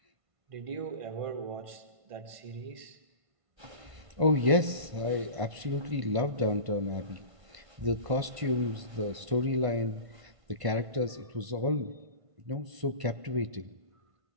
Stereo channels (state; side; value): late; left; 1.5 ms